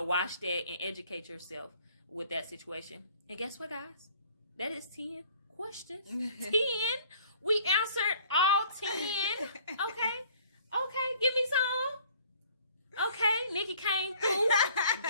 watch that and educate yourself with that situation. And guess what, guys? That is 10 questions. 10. We answered all 10. Okay, give me some. Okay, Nikki came through,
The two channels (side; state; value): both; inverted; correlation -0.55